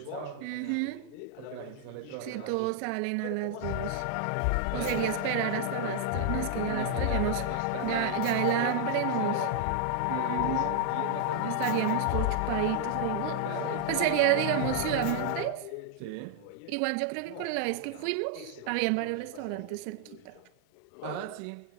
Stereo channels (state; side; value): different; both; correlation 0.00